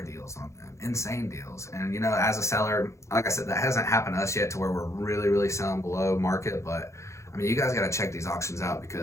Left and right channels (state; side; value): late; right; 0.14 ms